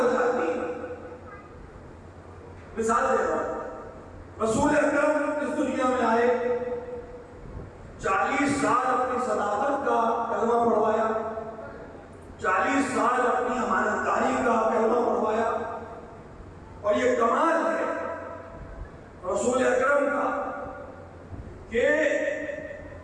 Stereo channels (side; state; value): both; identical; correlation 1.00